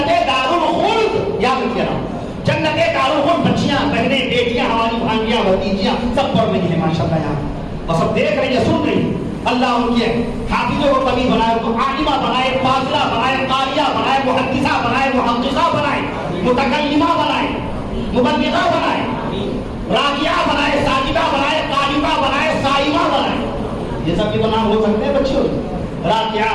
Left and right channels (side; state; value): both; identical; correlation 1.00